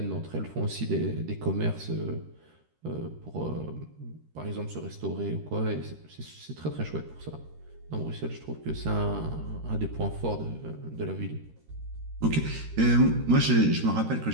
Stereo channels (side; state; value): left; late; 13 ms